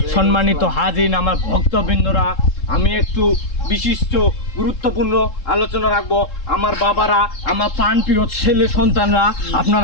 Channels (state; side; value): late; right; 3.7 ms